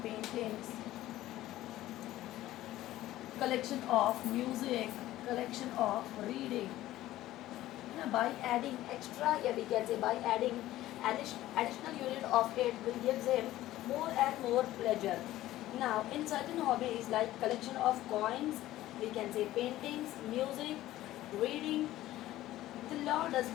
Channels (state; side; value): quieter; right; 15.1 dB